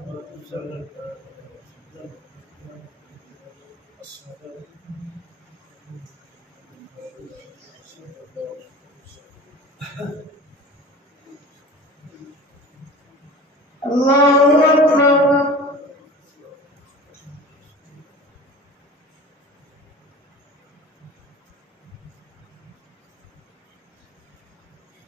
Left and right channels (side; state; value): both; normal; correlation 0.38